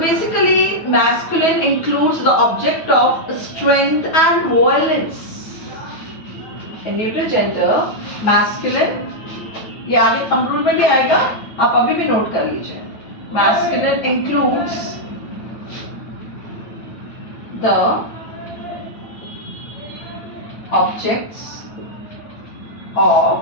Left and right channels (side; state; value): right; late; 9.2 ms